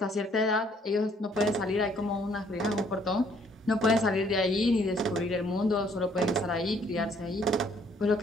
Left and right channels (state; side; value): normal; both; correlation 0.63